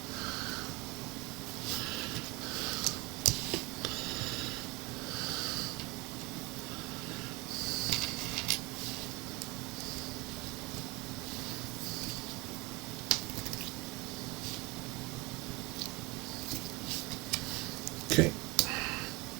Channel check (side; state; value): left; quieter; 23.6 dB